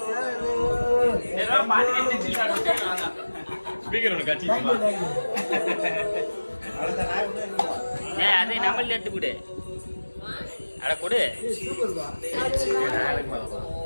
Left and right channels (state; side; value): inverted; both; correlation -1.00